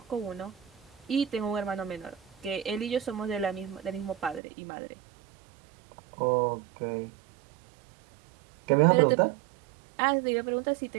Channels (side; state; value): left; drops out; at 4.4 s